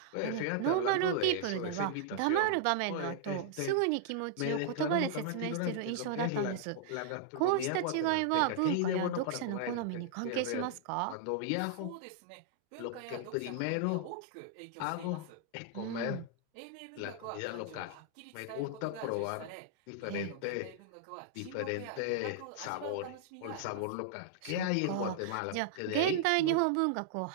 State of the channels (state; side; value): different; both; correlation -0.01